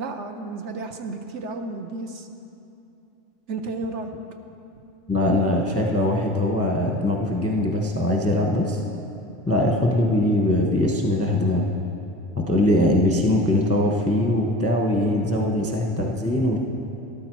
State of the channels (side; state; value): both; normal; correlation 0.39